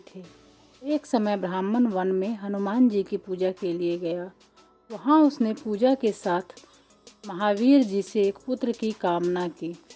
थे। एक समय ब्राह्मण वन में हनुमान जी की पूजा के लिए गया। वहाँ उसने पूजा के साथ महावीर जी से एक पुत्र की कामना की।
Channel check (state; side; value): identical; both; correlation 1.00